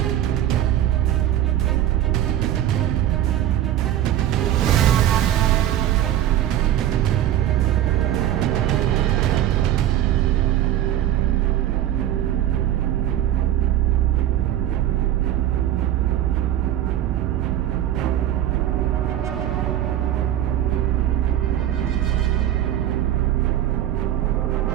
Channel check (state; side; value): quieter; left; 12.2 dB